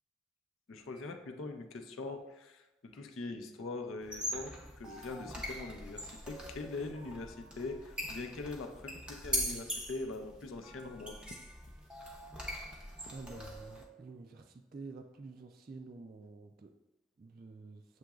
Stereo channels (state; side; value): normal; both; correlation 0.35